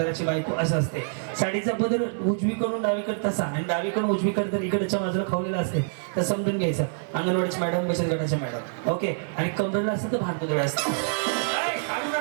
बायको असं असते. साडीचा पदर उजवीकडून डावीकडे तसा आणि डावीकडून उजवीकडे तर इकडच्या बाजूला खावलेला असते तर समजून घ्यायचं अंगणवाडीची मॅडम, बचत गटाच्या मॅडम. ओके. आणि कमरेला असतं तर भांडपुतळे असतं.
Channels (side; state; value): left; silent; digital silence